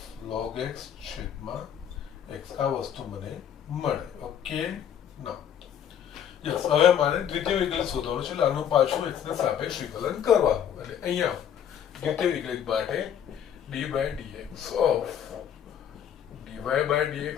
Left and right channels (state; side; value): quieter; right; 9.2 dB